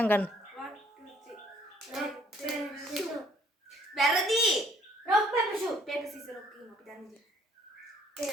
ගන්න. වැරදි. rock paper shoot. paper scissors rock කියමු අපි දන්නේ.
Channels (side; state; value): both; normal; correlation 0.62